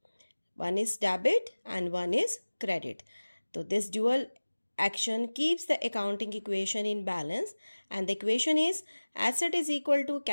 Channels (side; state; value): both; inverted; correlation -1.00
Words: One is debit and one is credit. So this dual action keeps the accounting equation in balance, and the equation is asset is equal to